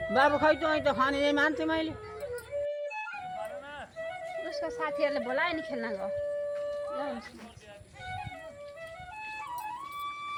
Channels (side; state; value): both; identical; correlation 1.00